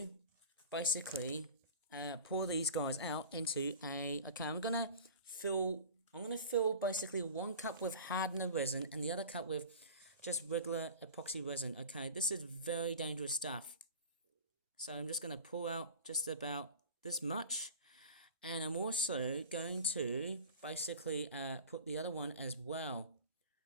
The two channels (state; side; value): inverted; both; correlation -0.38